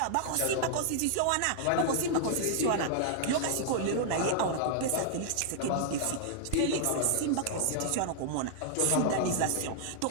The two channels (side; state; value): both; different; correlation -0.01